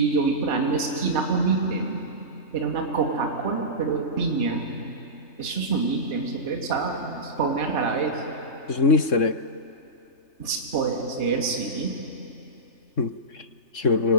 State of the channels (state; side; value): late; right; 3.3 ms